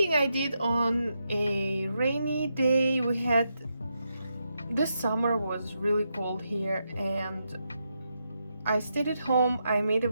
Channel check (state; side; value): inverted; both; correlation -0.83